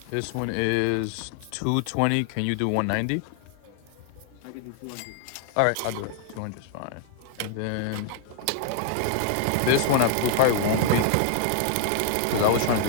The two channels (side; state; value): both; different; correlation 0.00